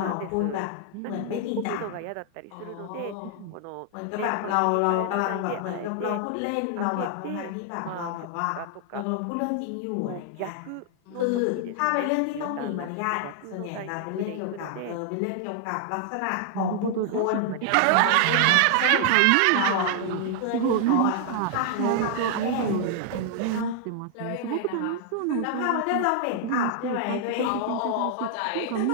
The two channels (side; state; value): both; different; correlation 0.00